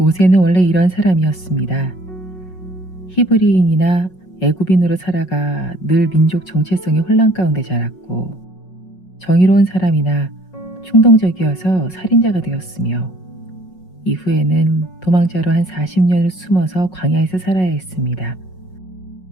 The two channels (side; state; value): right; late; 5.5 ms